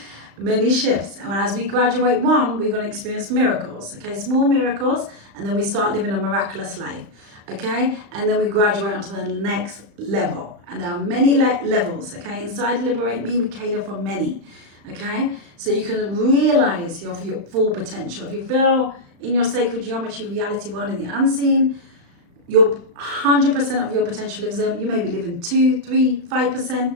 Many shifts. And as we graduate one, we're going to experience miracles, okay? Small miracles, and then we start living a miraculous life, okay? And then we graduate onto the next level. And there are many levels, okay? Inside Liberate Me, we cater for many, okay? So you can realize your full potential. If you feel in your sacred geometry reality world in the unseen, your 100% of your potential lives there. You may be living 2, 3, 5%,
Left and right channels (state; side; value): late; left; 35 ms